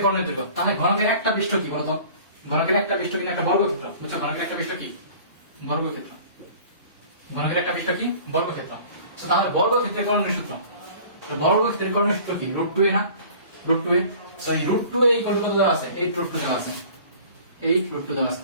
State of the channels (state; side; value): inverted; both; correlation -0.46